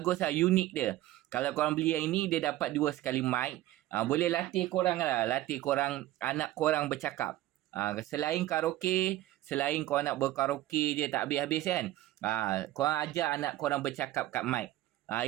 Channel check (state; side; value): quieter; left; 15.1 dB